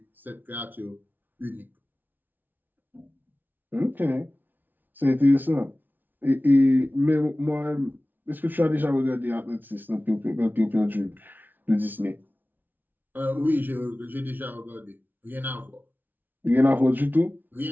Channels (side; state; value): left; late; 0.087 ms